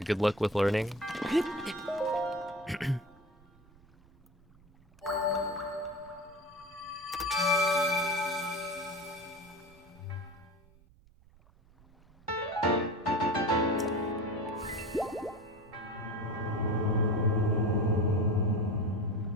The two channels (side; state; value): right; noise; rumble, 27 dB below the sound